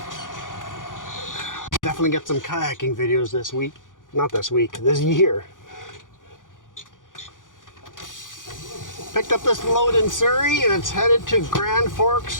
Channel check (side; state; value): right; late; 0.88 ms